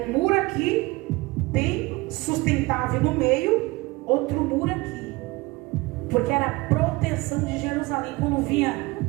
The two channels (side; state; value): left; quieter; 22.5 dB